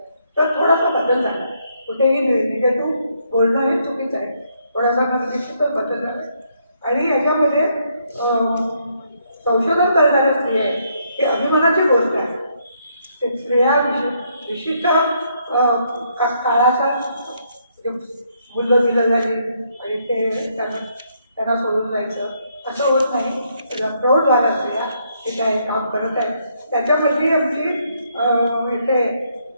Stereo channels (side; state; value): both; inverted; correlation -0.73